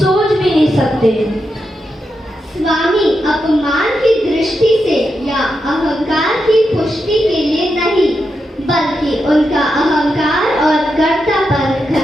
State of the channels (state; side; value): normal; both; correlation 0.86